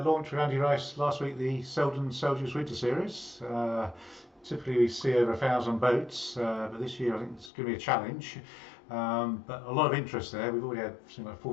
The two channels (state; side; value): drops out; right; at 7.5 s